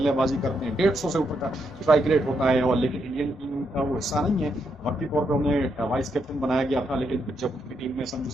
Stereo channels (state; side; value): normal; both; correlation 0.79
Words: करते हैं, 150 से ऊपर का स्ट्राइक रेट होता है, और लेकिन इंडियन टीम का वो हिस्सा नहीं है। वक्ती तौर पर उन्हें वाइस कैप्टन बनाया गया था, लेकिन जब उनकी टीम में संजू